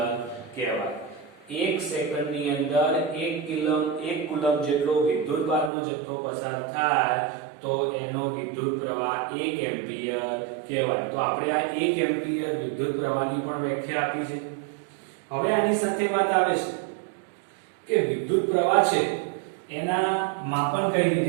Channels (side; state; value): left; drops out; at 5.7 s